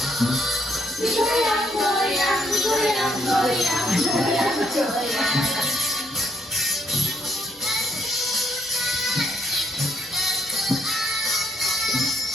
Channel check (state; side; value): normal; both; correlation 0.73